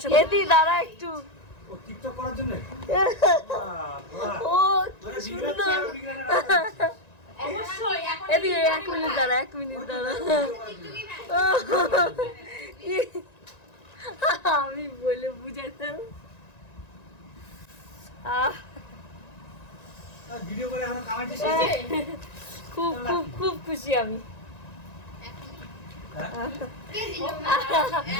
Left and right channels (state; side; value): late; right; 1.9 ms